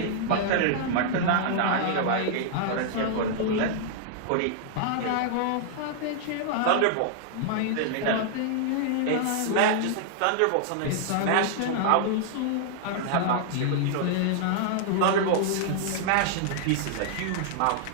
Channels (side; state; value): both; different; correlation -0.01